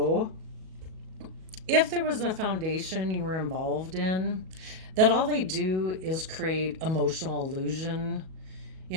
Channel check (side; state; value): left; late; 37 ms